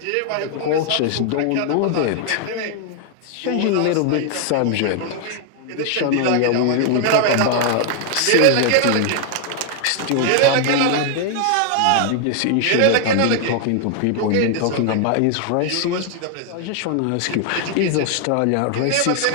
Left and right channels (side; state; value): both; different; correlation 0.00